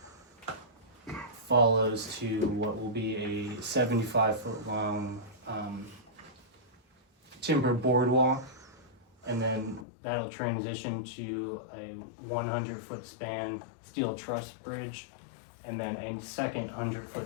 follows to what will be a 75-foot long timber boardwalk, and then that'll transition to a 100-foot span steel truss bridge, and then a second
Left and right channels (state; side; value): drops out; right; at 9.9 s